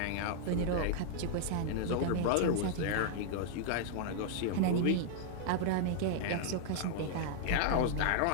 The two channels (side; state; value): both; different; correlation -0.01